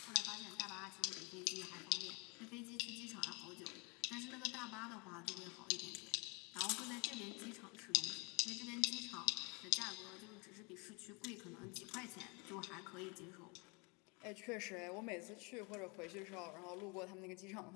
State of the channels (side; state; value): right; quieter; 30.2 dB